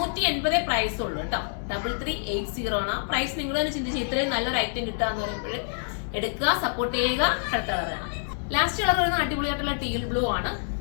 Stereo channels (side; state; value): right; silent; digital silence